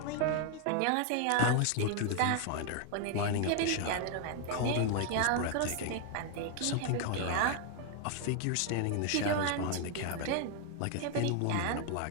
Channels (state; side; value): different; both; correlation 0.00